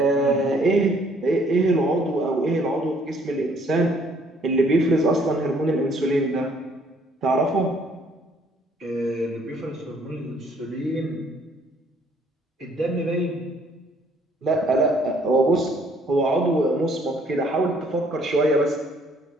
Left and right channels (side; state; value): both; normal; correlation 0.62